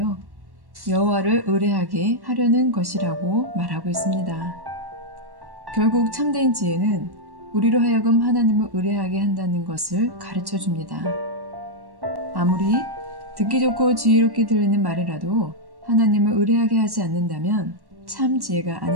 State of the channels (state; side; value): late; left; 1.1 ms